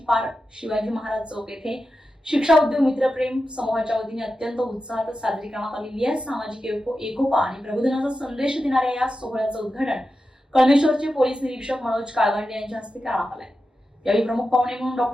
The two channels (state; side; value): normal; both; correlation 0.91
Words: पार शिवाजी महाराज चौक येथे शिक्षा उद्योग मित्रप्रेम समूहाच्या वतीने अत्यंत उत्साहात साजरी करण्यात आलेली आहे। सामाजिक एकोपा आणि प्रबोधनाचा संदेश देणाऱ्या या सोहळ्याचं उद्घाटन कळमेश्वरचे पोलीस निरीक्षक मनोज काळगंडे यांच्या हस्ते करण्यात आले। यावेळी प्रमुख पाहुणे म्हणून